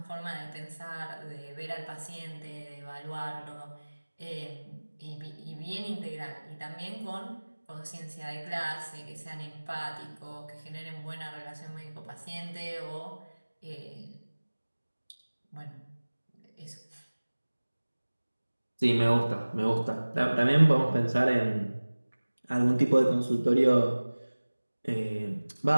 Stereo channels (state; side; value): inverted; both; correlation -1.00